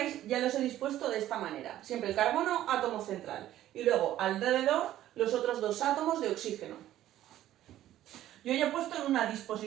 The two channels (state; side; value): quieter; left; 13.2 dB